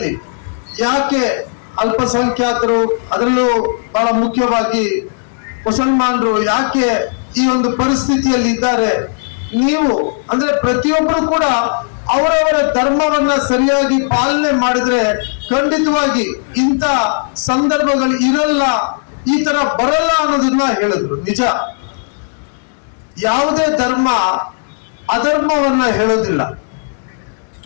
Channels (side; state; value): right; silent; digital silence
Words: ಯಾಕೆ ಅಲ್ಪಸಂಖ್ಯಾತರು, ಅದರಲ್ಲೂ ಬಹಳ ಮುಖ್ಯವಾಗಿ ಮುಸಲ್ಮಾನರು ಯಾಕೆ ಈ ಒಂದು ಪರಿಸ್ಥಿತಿಯಲ್ಲಿ ಇದ್ದಾರೆ, ನೀವು ಅಂದ್ರೆ ಪ್ರತಿಯೊಬ್ಬರು ಕೂಡ ಅವರವರ ಧರ್ಮವನ್ನ ಸರಿಯಾಗಿ ಪಾಲನೆ ಮಾಡಿದ್ರೆ ಖಂಡಿತವಾಗಿ ಇಂಥ ಸಂದರ್ಭಗಳು ಇರಲ್ಲ, ಈ ತರ ಬರಲ್ಲ ಅನ್ನೋದನ್ನ ಹೇಳಿದ್ರು. ನಿಜ, ಯಾವುದೇ ಧರ್ಮ ಅಧರ್ಮವನ್ನ ಹೇಳೋದಿಲ್ಲ,